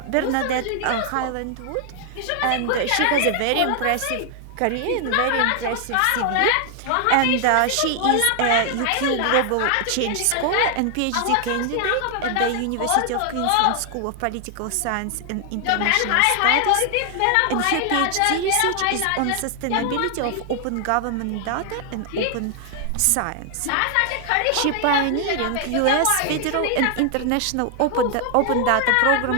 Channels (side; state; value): both; different; correlation 0.00